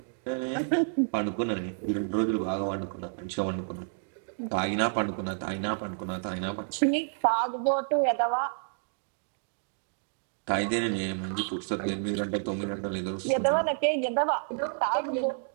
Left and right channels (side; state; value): left; silent; digital silence